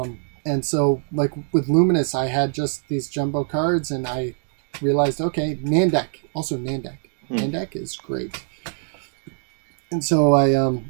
And so, like with Luminous, I had just these jumbo cards, and I realized, okay, Nandek, also Nandek. Nandek is great. And so I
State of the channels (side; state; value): left; silent; 62 dB below the other